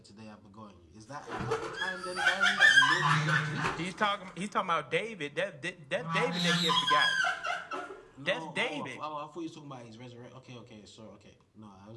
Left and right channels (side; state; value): both; identical; correlation 1.00